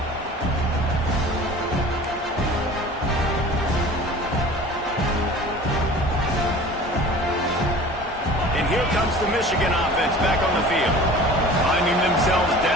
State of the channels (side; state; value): both; normal; correlation 0.42